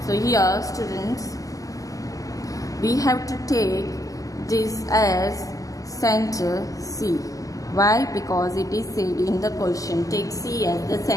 So here students, we have to take this as center C. Why? Because it is said in the question, take C as the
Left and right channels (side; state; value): right; late; 0.17 ms